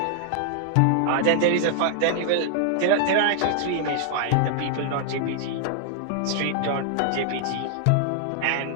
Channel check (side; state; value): both; different; correlation -0.01